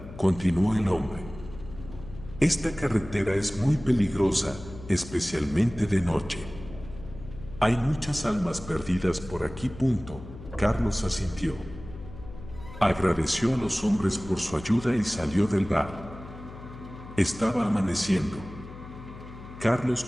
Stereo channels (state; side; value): noise; left; hum, 14 dB below the sound